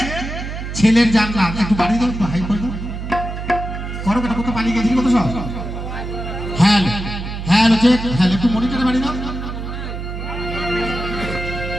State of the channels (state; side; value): noise; right; hum, 6 dB below the sound